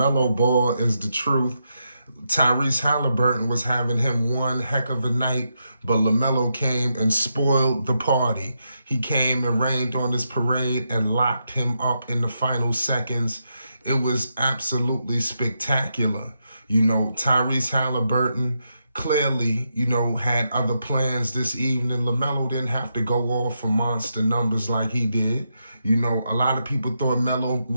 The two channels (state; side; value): inverted; both; correlation -0.83